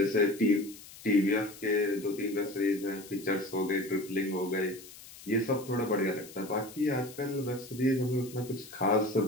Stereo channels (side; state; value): left; noise; hiss, 18 dB below the sound